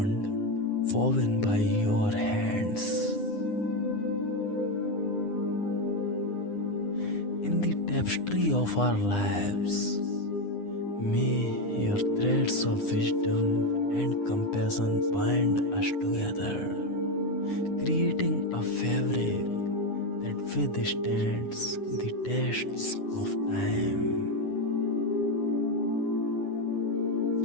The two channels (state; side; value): late; right; 9.8 ms